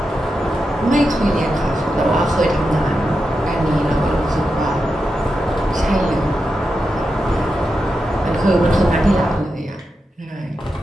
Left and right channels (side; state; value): both; normal; correlation 0.88